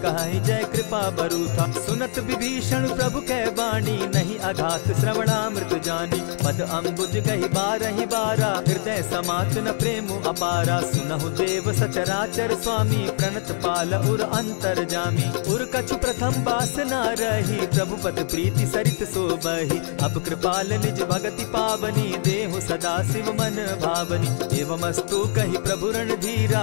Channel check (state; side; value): silent; right; digital silence